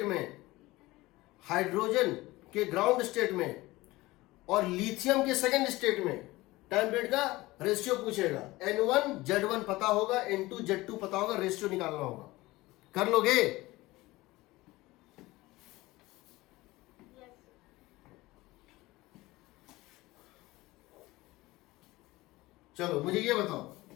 में, हाइड्रोजन के ग्राउंड स्टेट में और लिथियम के सेकंड स्टेट में टाइम पीरियड का रेशियो पूछेगा। n1 z1 पता होगा, n2 z2 पता होगा, रेशियो निकालना होगा। कर लोगे? चलो मुझे ये बताओ,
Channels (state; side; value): quieter; right; 19.6 dB